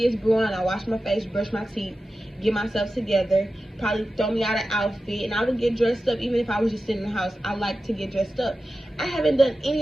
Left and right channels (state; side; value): normal; both; correlation 0.93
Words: is brewing, I wash my face, brush my teeth, get myself together, probably throw me out an outfit, and I would get dressed up even if I was just sitting in the house. I like to get dressed up. I haven't done any